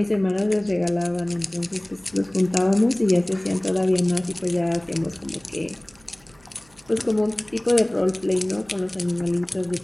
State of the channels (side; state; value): right; noise; hum, 30 dB below the sound